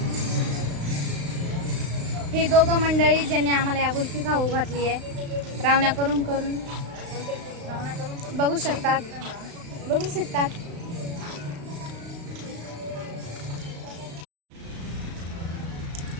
हे दोघं मंडळी ज्यांनी आम्हाला या गुल्फी खाऊ घातली आहे, रावण्या करून बघू शकतात.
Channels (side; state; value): left; late; 35 ms